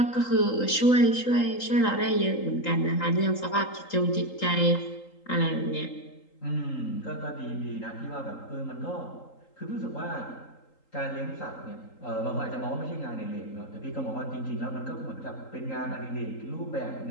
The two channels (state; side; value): late; right; 3.8 ms